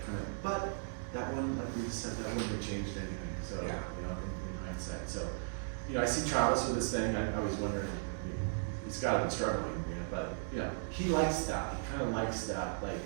but that wouldn't, like we just said, that wouldn't have changed anything. So, Yeah. In hindsight. So, I see Travis with this thing. I always wonder, he's got to be struggling, but, he likes that. He kind of likes that, I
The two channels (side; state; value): left; silent; 53 dB below the other